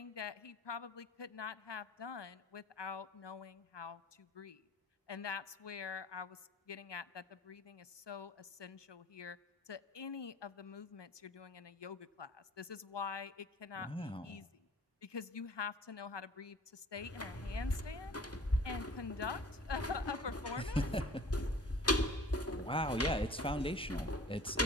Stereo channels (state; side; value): normal; both; correlation 0.47